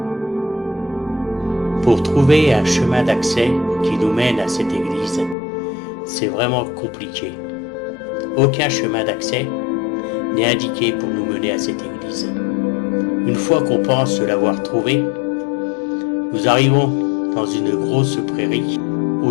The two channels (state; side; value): drops out; right; at 5.4 s